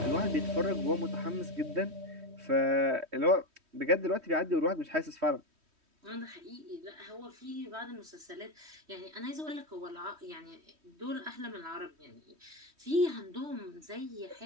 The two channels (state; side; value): late; left; 3.1 ms